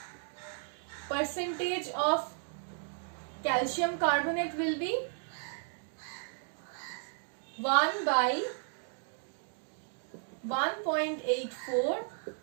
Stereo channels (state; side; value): silent; left; 55 dB below the other